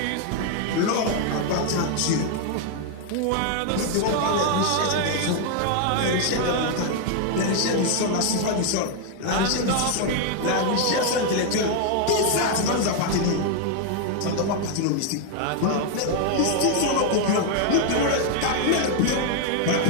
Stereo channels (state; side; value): different; both; correlation 0.00